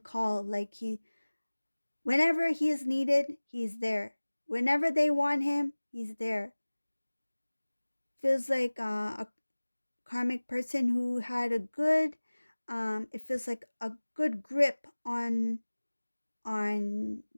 like whenever he is needed, he's there. Whenever they want him, he's there. Feels like a karmic person who had a good, it feels like a good grip on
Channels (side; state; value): both; inverted; correlation -1.00